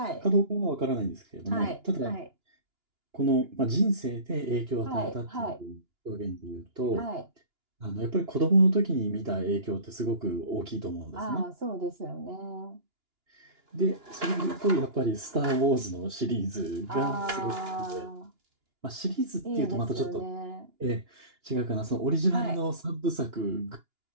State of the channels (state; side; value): late; left; 2.9 ms